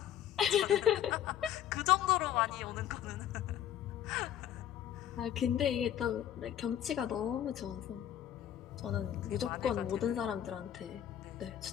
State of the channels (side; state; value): right; quieter; 10.8 dB